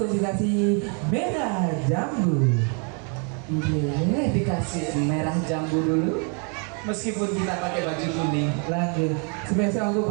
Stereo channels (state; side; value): quieter; left; 38.5 dB